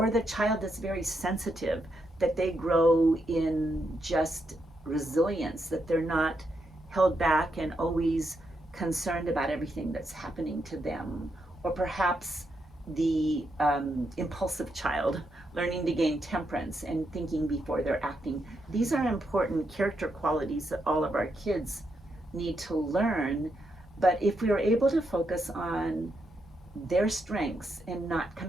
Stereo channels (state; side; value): normal; both; correlation 0.81